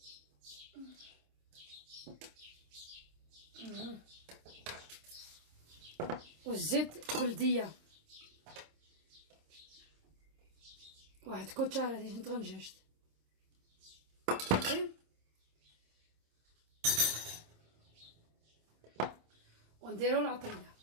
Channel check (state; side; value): late; left; 26 ms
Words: والزيت بلديه، واحد كوتشاره ديال طنجاج ونديرو العطريه.